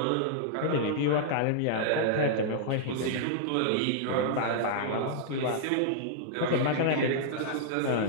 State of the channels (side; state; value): both; different; correlation -0.01